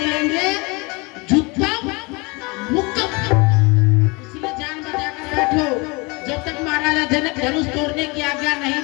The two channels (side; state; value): right; quieter; 27.2 dB